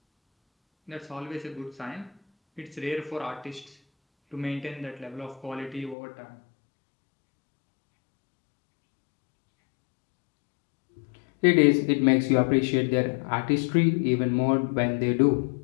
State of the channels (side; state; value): right; drops out; at 6.0 s